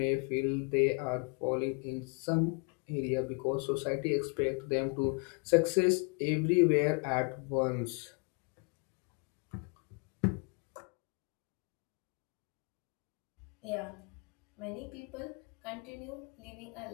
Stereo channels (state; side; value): quieter; right; 35.3 dB